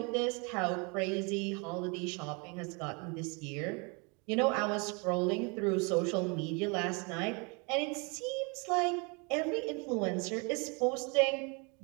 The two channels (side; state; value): left; quieter; 31.8 dB